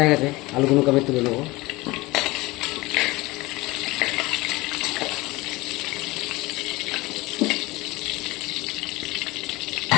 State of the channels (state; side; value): quieter; right; 21.3 dB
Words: হয়ে গেছে, আলুগুলোকে আমি তুলে নেবো।